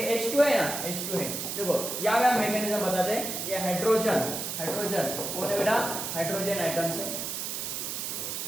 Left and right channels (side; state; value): right; noise; hiss, 4 dB below the sound